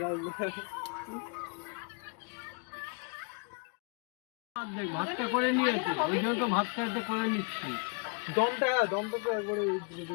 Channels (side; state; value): right; quieter; 35.8 dB